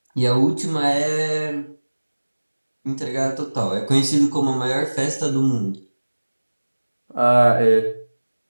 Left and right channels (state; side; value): inverted; both; correlation -1.00